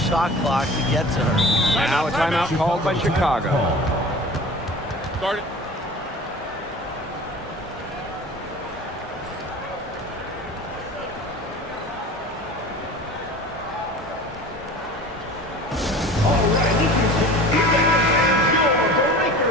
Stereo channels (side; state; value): both; normal; correlation 0.40